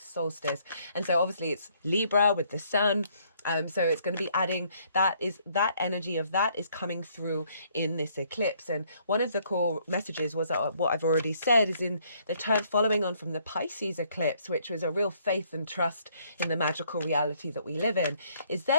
And so obviously it's Libra with the sun. So it's going to be adding that energy of that is coming through in this eclipse. And one of the core messages was what I've already said is in the turn following on from the Pisces eclipse, which was a real faith and trust in the magical reality that we live in, is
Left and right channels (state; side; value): inverted; both; correlation -0.66